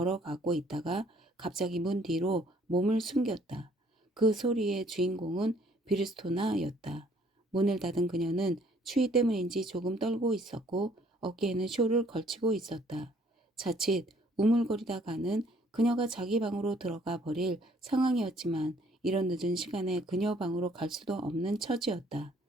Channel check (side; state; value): both; normal; correlation 0.61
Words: 있다가 갑자기 문 뒤로 몸을 숨겼다. 그 소리의 주인공은 비르스토나였다. 문을 닫은 그녀는 추위 때문인지 조금 떨고 있었고 어깨에는 쇼를 걸치고 있었다. 자칫 우물거리다가는 그녀가 자기 방으로 들어가 버릴 상황이었지만 이런 늦은 시간에 그녀 방으로 갈 수도 없는 처지였다.